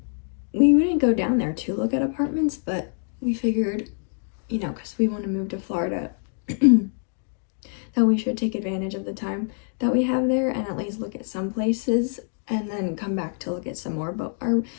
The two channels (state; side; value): silent; right; 55 dB below the other